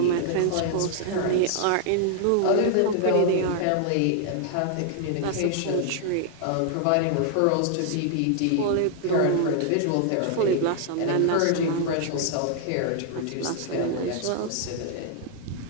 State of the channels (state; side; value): different; both; correlation 0.00